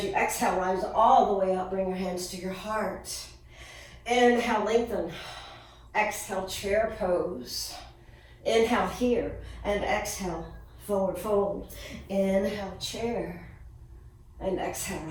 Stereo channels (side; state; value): both; identical; correlation 1.00